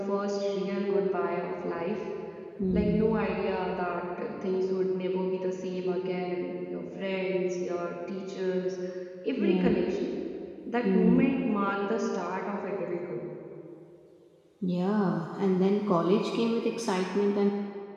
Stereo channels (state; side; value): identical; both; correlation 1.00